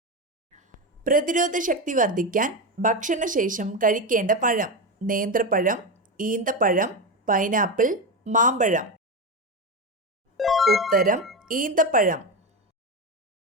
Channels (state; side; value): normal; both; correlation 0.16